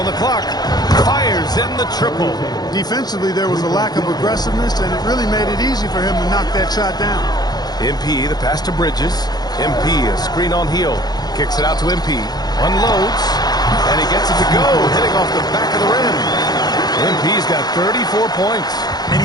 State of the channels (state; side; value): late; right; 0.19 ms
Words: the clock. Fires in the triple. Defensively, there was a lack of aggressiveness, and it really made it easy for him to knock that shot down. MP, the pass to Bridges. MP, a screen on Heel. Kicks it out to MP. Unloads. And he gets it to go, hitting off the back of the rim. MP's got 34 points. And